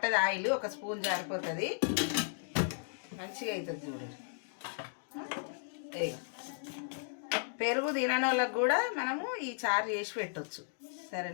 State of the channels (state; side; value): silent; right; digital silence